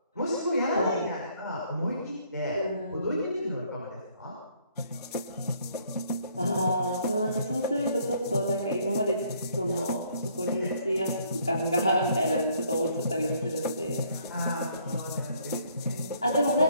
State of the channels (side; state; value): both; inverted; correlation -0.65